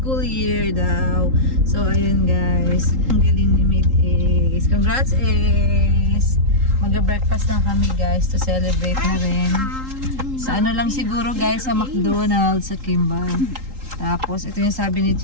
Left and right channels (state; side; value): late; left; 3.8 ms